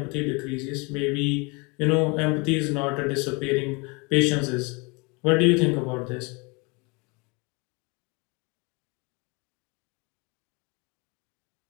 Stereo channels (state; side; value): quieter; right; 29.1 dB